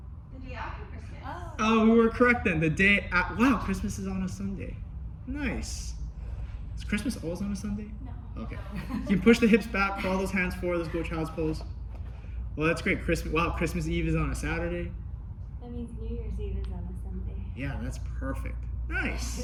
the day after Christmas. Oh, we were correct then. The day wow, Christmas is on a Sunday. Nice. Is Christmas always on a Sunday? No. Okay. You can push the hips back, crawl those hands forward. Let's go child's pose. Well, that's great. Christmas Eve is on a Saturday. That means New Year's Eve is on a Sunday. Yeah, that's perfect.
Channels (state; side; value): identical; both; correlation 1.00